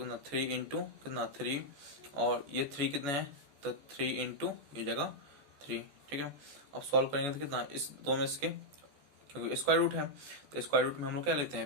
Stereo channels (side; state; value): left; late; 14 ms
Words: 3 इंटू कितना 3, और ये 3 कितने हैं तो 3 इंटू ये जगह 3। ठीक है, अब सॉल्व करेंगे तो कितना इस दो में इसके, क्योंकि स्क्वायर रूट है तो स्क्वायर रूट में हम लोग क्या लेते